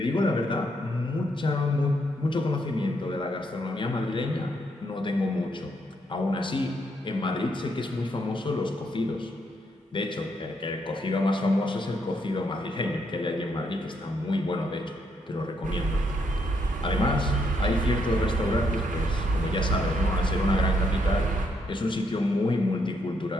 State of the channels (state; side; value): normal; both; correlation 0.75